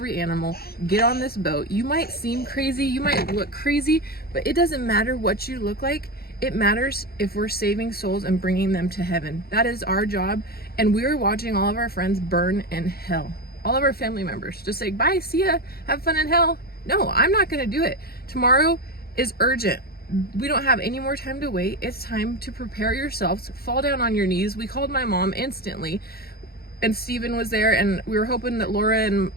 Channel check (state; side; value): late; right; 0.45 ms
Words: animal, get on this boat. You might seem crazy, you might look crazy, but it doesn't matter what you look like. It matters if we're saving souls and bringing them to heaven. That is our job. And we were watching all of our friends burn in hell. All of our family members just say, bye, see ya, have fun in hell. No, I'm not going to do it. Tomorrow is urgent. We don't have any more time to wait. It's time to prepare yourselves. Fall down on your knees. We called my mom instantly, and Stephen was there, and we were hoping that Laura and